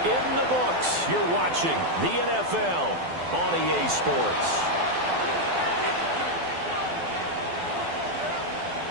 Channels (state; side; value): late; left; 12 ms